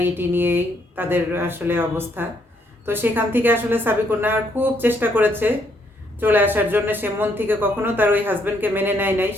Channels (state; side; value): normal; both; correlation 0.72